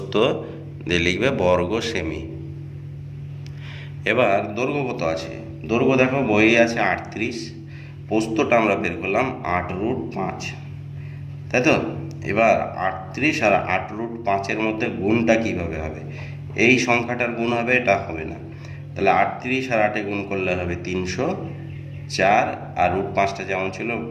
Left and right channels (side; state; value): both; identical; correlation 1.00